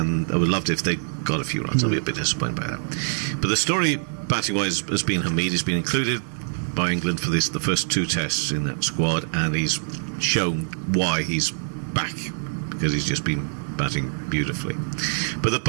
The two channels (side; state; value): left; silent; 61 dB below the other